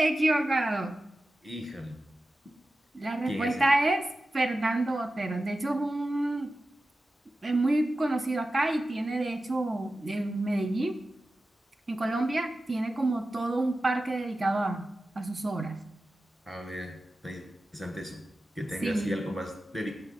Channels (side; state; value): both; normal; correlation 0.94